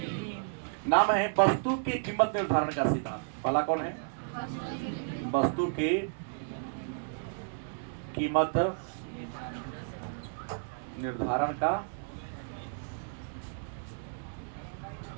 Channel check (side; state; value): left; silent; digital silence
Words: नाम है वस्तु की कीमत निर्धारण का सिद्धांत। पहला कौन है? वस्तु की कीमत निर्धारण का